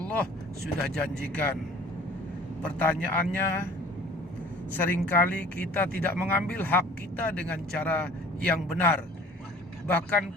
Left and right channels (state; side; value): normal; both; correlation 0.49